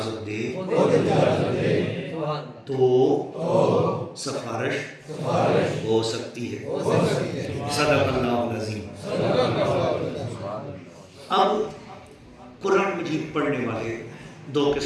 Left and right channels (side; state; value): both; identical; correlation 1.00